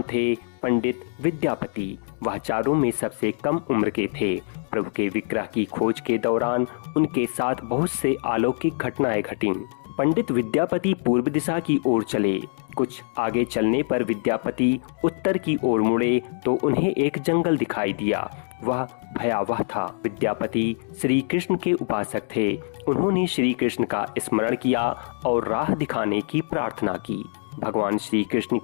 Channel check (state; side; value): silent; right; 58 dB below the other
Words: थे पंडित विद्यापति। वह चारों में सबसे कम उम्र के थे। प्रभु के विग्रह की खोज के दौरान उनके साथ बहुत से अलौकिक घटनाएं घटीं। पंडित विद्यापति पूर्व दिशा की ओर चले। कुछ आगे चलने पर विद्यापति उत्तर की ओर मुड़े तो उन्हें एक जंगल दिखाई दिया। वह भयावह था। विद्यापति श्री कृष्ण के उपासक थे। उन्होंने श्री कृष्ण का स्मरण किया और राह दिखाने की प्रार्थना की। भगवान श्री कृष्ण